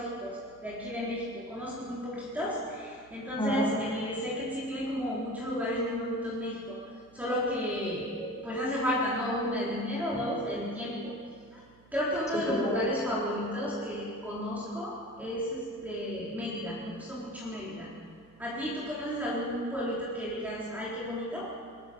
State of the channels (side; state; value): right; noise; hum, 26 dB below the sound